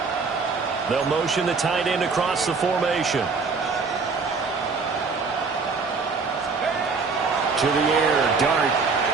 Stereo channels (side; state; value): left; quieter; 4.7 dB